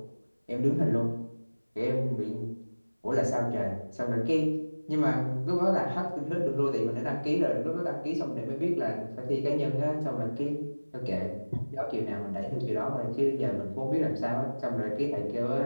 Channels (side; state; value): both; inverted; correlation -1.00